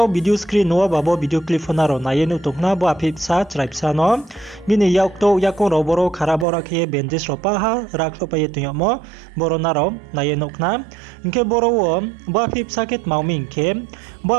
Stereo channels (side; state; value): left; drops out; at 6.5 s